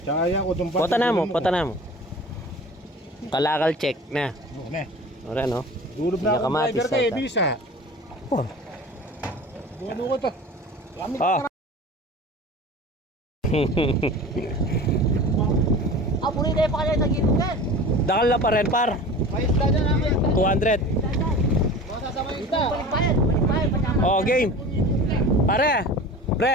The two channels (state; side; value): normal; both; correlation 0.38